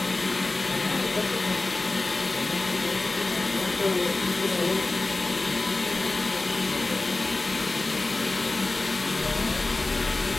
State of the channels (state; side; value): quieter; right; 3.1 dB